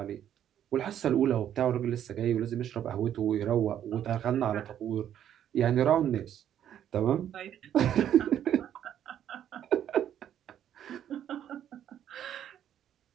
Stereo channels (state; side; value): quieter; left; 10.3 dB